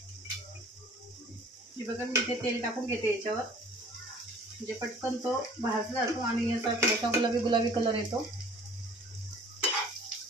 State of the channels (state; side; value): normal; both; correlation 0.50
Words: हे बघा, मी इथे तेल टाकून घेते याच्यावर, म्हणजे पटकन तो भाजला जातो आणि याचा थोडासा गुलाबी कलर येतो।